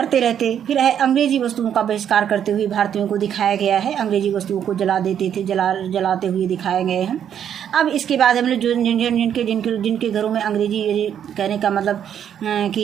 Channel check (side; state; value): left; quieter; 9.1 dB